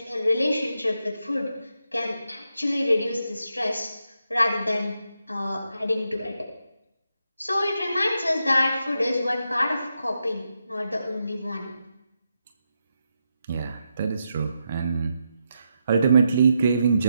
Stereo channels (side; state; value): both; inverted; correlation -0.84